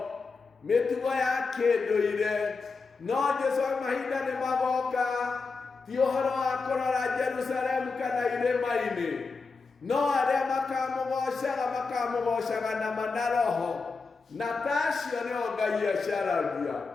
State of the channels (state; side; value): quieter; right; 4.4 dB